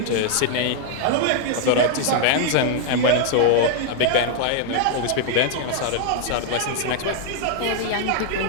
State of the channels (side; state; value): both; different; correlation 0.00